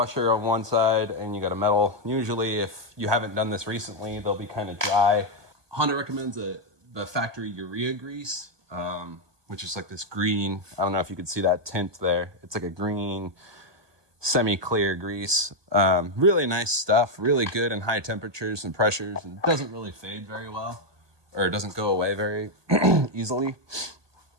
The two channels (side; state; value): left; late; 1.2 ms